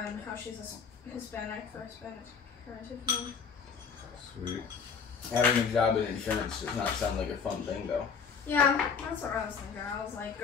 how she's a Hispanic for Hispanic heritage name. Sweet. Having a job in insurance does not sound like a fun thing, though. Yeah, that's what I was thinking. I was like,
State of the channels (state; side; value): quieter; right; 6.1 dB